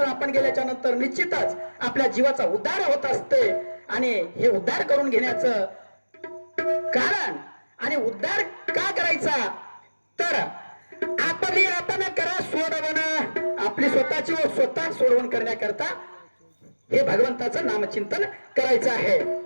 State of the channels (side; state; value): both; inverted; correlation -1.00